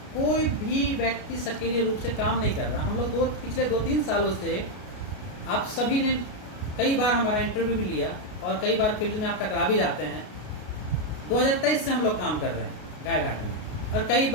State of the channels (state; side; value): late; right; 33 ms